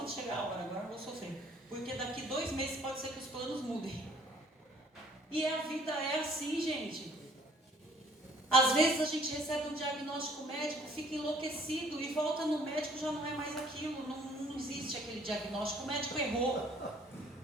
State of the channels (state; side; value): normal; both; correlation 0.59